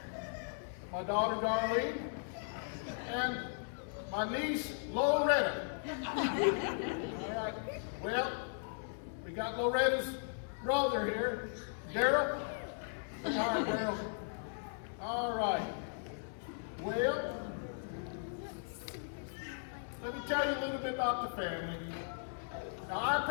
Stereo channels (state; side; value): silent; right; 53 dB below the other